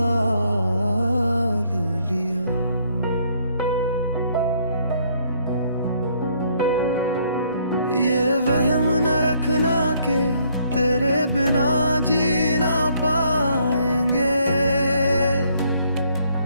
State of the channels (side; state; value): both; inverted; correlation -0.67